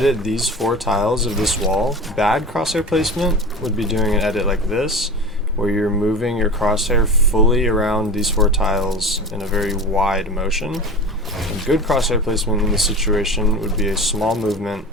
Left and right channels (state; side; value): normal; both; correlation 0.32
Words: these 4 tiles of this wall, bad crosshair placement would be doing an edit like this, where you're moving your crosshair fully around these 4 tiles in a very wide motion. And good crosshair placement in this situation would be a small movement